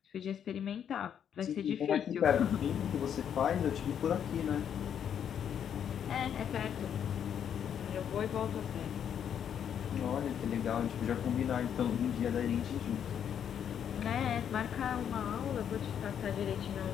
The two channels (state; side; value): quieter; right; 8.7 dB